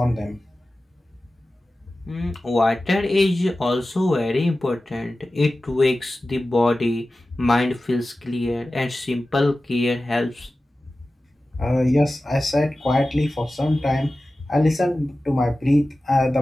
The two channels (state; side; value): normal; both; correlation 0.95